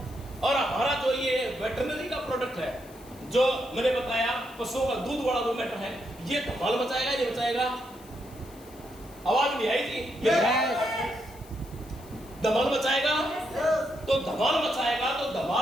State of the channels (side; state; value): left; noise; hiss, 23 dB below the sound